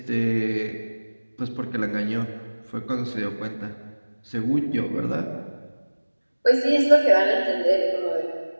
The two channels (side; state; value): both; inverted; correlation -1.00